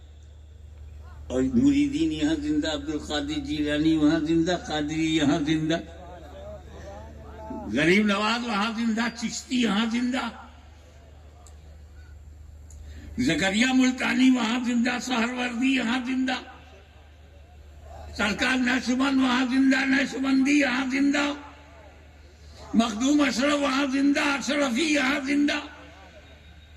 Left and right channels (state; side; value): identical; both; correlation 1.00